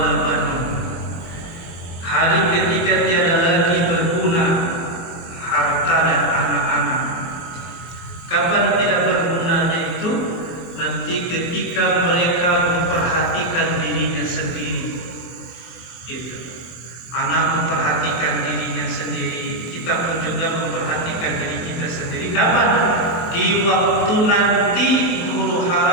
banun. Hari ketika tiada lagi berguna harta dan anak-anak. Kapan tidak bergunanya itu? Nanti ketika mereka memperhatikan dirinya sendiri. Gitu. Anak memperhatikan dirinya sendiri, kita pun juga memperhatikan diri kita sendiri. Kapan? Di waktu nanti huru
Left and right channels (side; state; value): right; late; 23 ms